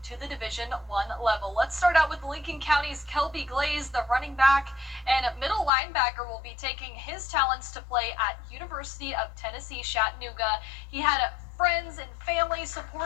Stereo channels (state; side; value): drops out; right; at 5.7 s